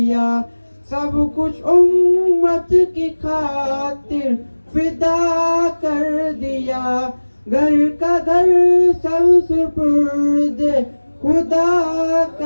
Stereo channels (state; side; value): inverted; both; correlation -1.00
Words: सब कुछ उम्मत की खातिर फिदा कर दिया, घर का घर सब सुपुर्द खुदा